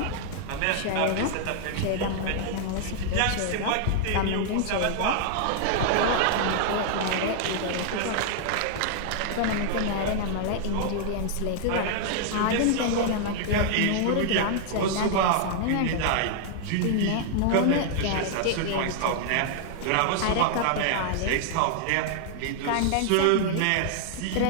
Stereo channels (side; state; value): both; different; correlation -0.01